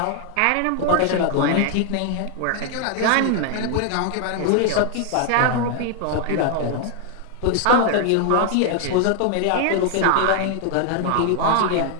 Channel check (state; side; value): different; both; correlation 0.00